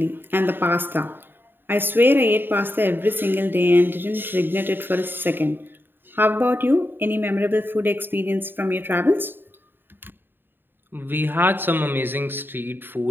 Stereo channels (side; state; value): left; late; 0.097 ms